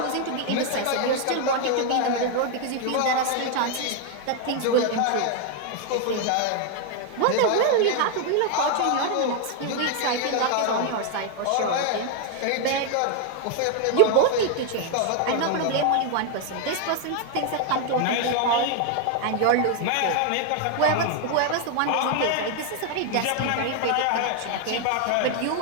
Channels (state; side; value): different; both; correlation 0.00